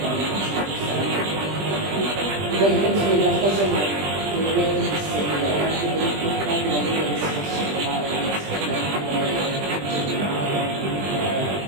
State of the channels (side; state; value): left; late; 20 ms